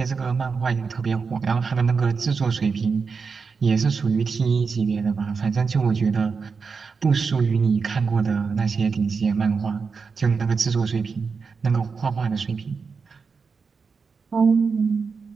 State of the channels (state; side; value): quieter; left; 5.2 dB